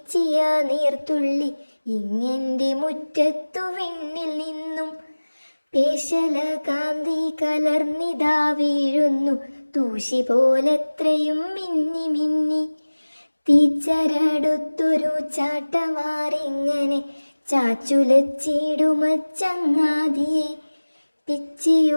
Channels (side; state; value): both; inverted; correlation -1.00